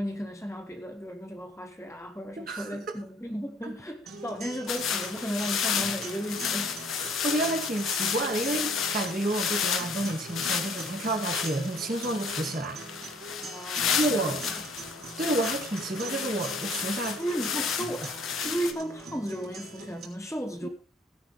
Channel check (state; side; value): normal; both; correlation 0.58